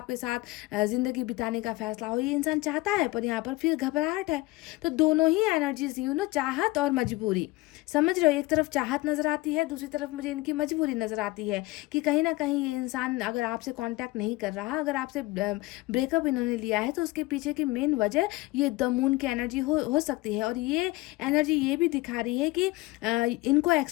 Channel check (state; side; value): quieter; right; 20.8 dB